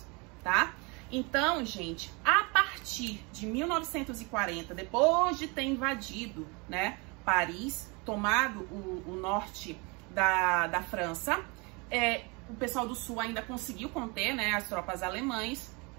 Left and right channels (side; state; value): left; quieter; 29.2 dB